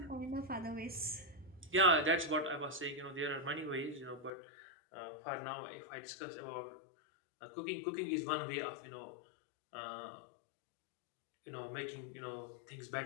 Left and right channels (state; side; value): drops out; right; at 4.3 s